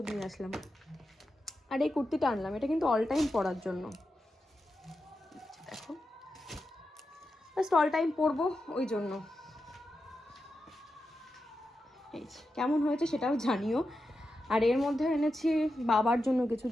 নিয়ে আসলাম। আর এই কুর্তিটা আনলাম, এটা কিন্তু অল টাইম পরার জন্য, দেখো জাস্ট অল টাইম পরবো ওই জন্য। এই কেমন হয়েছে সেটাও জানিও। আর এর মধ্যে এনেছি বাবার জন্য কিছু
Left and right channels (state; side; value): normal; both; correlation 0.89